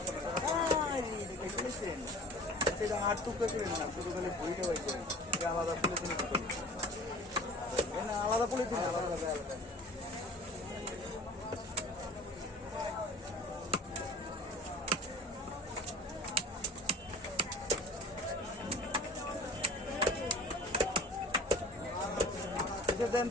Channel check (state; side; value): normal; both; correlation 0.42